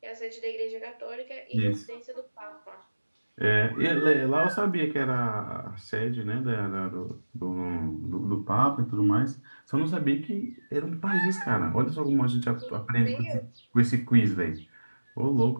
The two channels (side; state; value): both; inverted; correlation -1.00